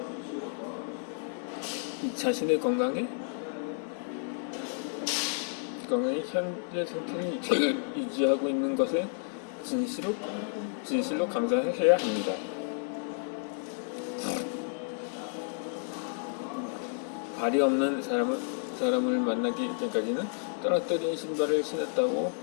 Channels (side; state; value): right; silent; 57 dB below the other